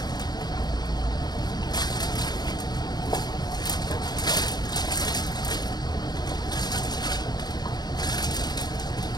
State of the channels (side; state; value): right; late; 0.19 ms